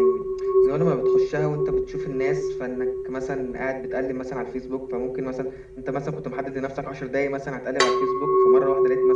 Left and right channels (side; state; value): both; identical; correlation 1.00